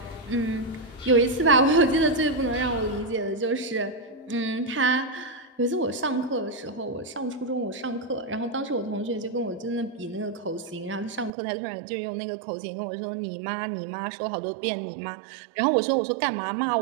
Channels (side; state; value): left; drops out; at 11.3 s